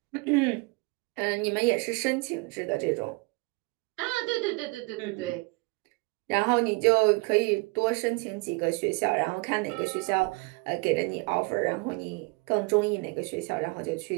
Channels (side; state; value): left; quieter; 27.2 dB